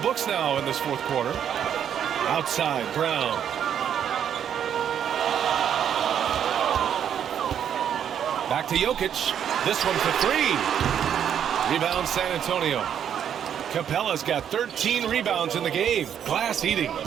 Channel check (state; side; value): quieter; left; 9.0 dB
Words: now in this fourth quarter. Outside, Brown. Back to Jokic. This one for three. Rebound San Antonio. Capella's got 13 rebounds in the game. Glass eating.